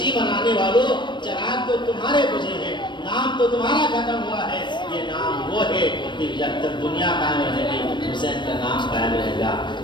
منانے والوں، چراغ تو تمہارے بجھے ہیں، نام تو تمہارا ختم ہوا ہے، یہ نام وہ ہے کہ جب تک دنیا قائم رہے گی حسین کا نام قائم رہے گا۔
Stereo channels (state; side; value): late; right; 0.22 ms